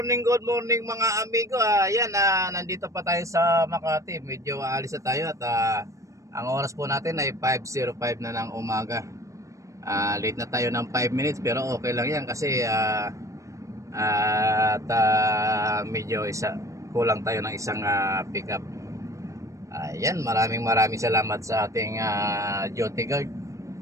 good morning mga amigo. Ayan, nandito pa tayo sa Makati. Medyo aalis na tayo at ang oras po natin ay 5:05 na ng umaga. Late na tayo ng 5 minutes pero okay lang yan kasi medyo kulang tayo ng isang pickup. Ayan, maraming salamat sa ating duty guard.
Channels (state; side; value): late; left; 0.15 ms